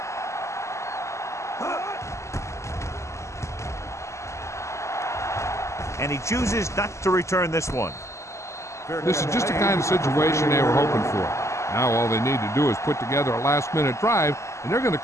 And he chooses not to return this one. This is just the kind of situation they were hoping for. Now all they need to do is put together a last-minute drive, and they're going to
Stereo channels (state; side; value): late; right; 0.14 ms